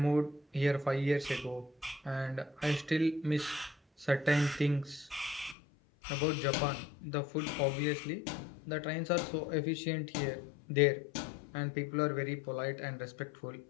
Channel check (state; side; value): drops out; right; at 5.6 s